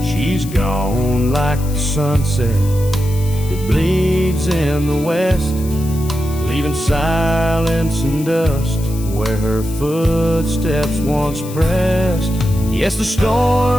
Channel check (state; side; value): noise; left; hiss, 16 dB below the sound